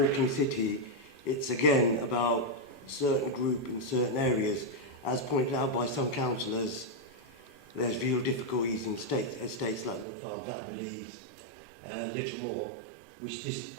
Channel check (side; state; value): left; drops out; at 10.1 s